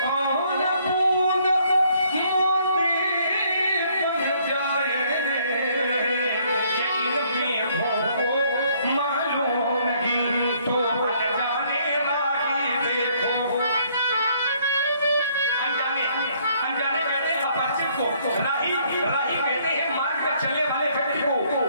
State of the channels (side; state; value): both; inverted; correlation -0.65